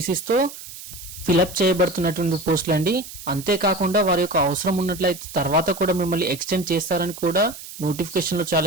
ఫిలప్ చేయబడుతున్నటువంటి పోస్టులు అండి. అంతేకాకుండా వారి యొక్క అవసరం ఉన్నట్లయితే తర్వాత కూడా మిమ్మల్ని ఎక్స్టెండ్ చేస్తారని కూడా నోటిఫికేషన్లో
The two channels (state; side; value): noise; right; hiss, 14 dB below the sound